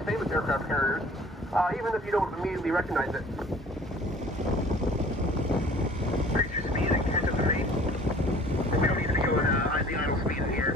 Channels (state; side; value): normal; both; correlation 0.50